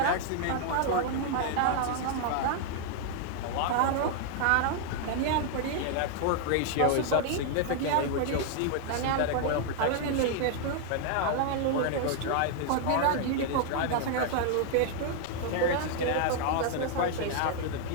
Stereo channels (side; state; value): both; different; correlation 0.00